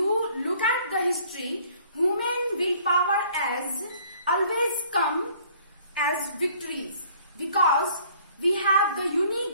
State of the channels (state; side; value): inverted; both; correlation -0.57